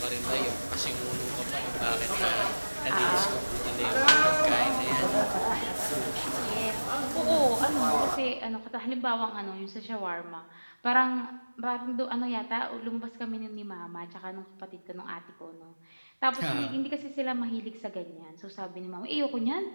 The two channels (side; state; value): both; inverted; correlation -1.00